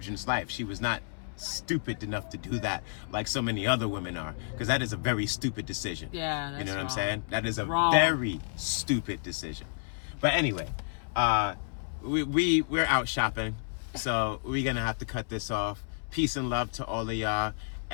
life. She was not stupid enough to do that like so many other women are, because that is a very stupid decision. Yeah, that's you know what wrong. I'm saying? That is a wrong. Very stupid decision. But anyway, we're out shopping, so we're gonna have to cut this off. Peace and love to all of y'all,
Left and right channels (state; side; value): silent; right; 57 dB below the other